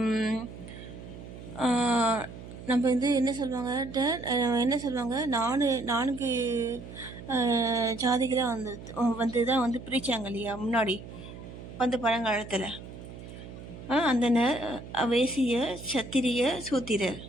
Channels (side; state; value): right; noise; hum, 14 dB below the sound